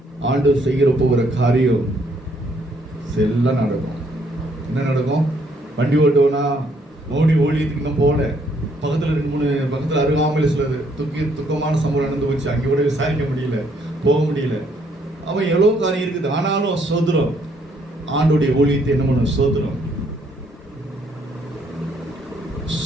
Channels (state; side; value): normal; both; correlation 0.68